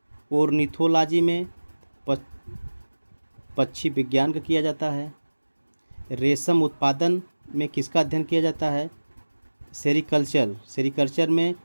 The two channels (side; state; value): both; inverted; correlation -1.00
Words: ओर्निथोलॉजी में पक्षी विज्ञान का किया जाता है। रेशम उत्पादन में किसका अध्ययन किया जाता है? सेरीकल्चर में